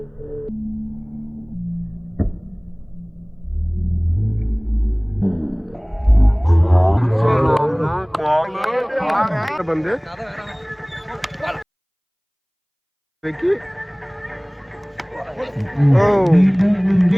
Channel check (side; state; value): both; identical; correlation 1.00